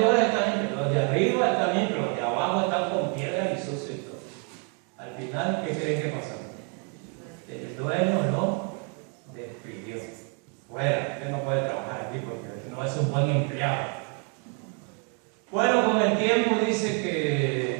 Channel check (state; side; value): quieter; left; 38.8 dB